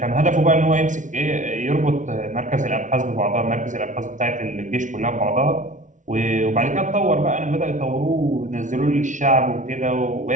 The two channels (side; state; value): left; late; 0.37 ms